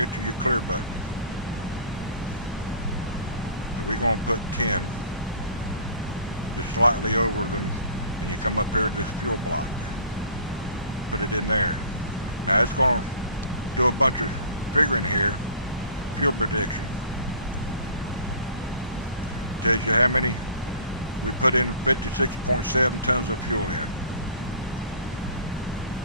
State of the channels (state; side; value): inverted; both; correlation -0.47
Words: to your clear button. So we're going to put 10, just slightly over them, and you come up here to this fuel block. Put it in there. Now it's going to do a bunch of figuring here. Fuel prediction. Tells you how many we put in. 56.7 tons of fuel in.